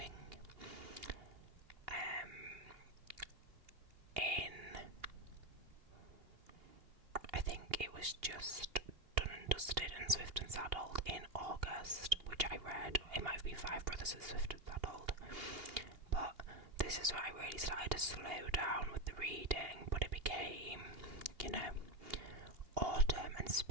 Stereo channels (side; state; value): left; late; 2.8 ms